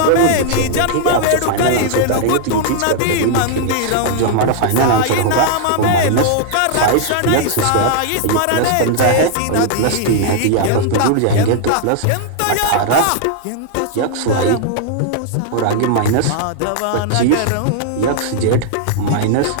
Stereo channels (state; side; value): different; both; correlation -0.01